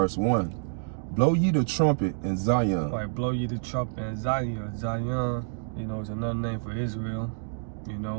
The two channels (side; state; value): left; silent; digital silence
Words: 1. Blow ye the trumpet in Zion. Right, blow ye the trumpet in Zion. Zion, is another name for Israel,